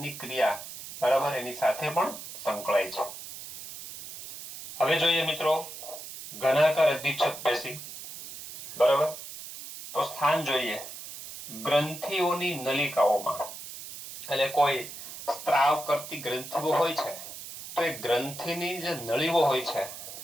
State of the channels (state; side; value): noise; right; hiss, 12 dB below the sound